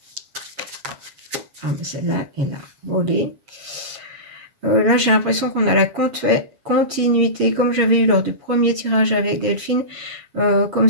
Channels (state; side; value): late; left; 7.3 ms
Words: Ah, mais celle-là, elle a volé. Là, j'ai l'impression qu'on a la continuité, comme j'avais eu lors du premier tirage avec Delphine, comme